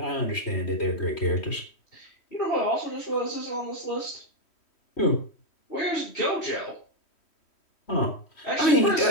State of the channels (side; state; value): right; late; 3.1 ms